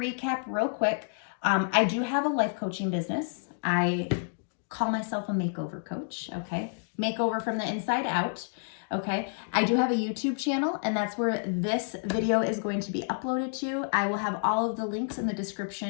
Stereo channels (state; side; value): silent; right; digital silence